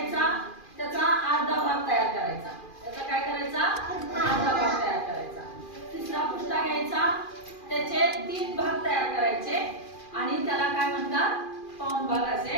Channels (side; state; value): right; late; 2.4 ms